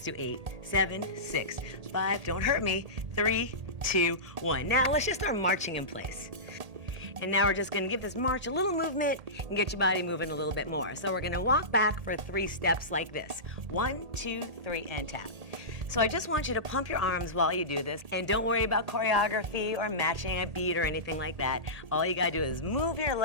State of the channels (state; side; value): late; left; 1.8 ms